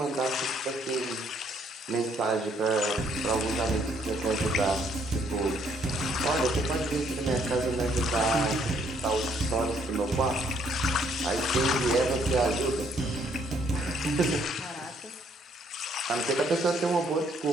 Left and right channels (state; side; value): normal; both; correlation 0.67